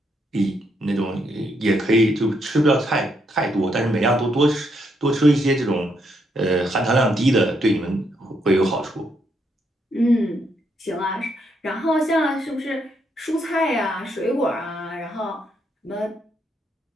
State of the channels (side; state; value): both; normal; correlation 0.76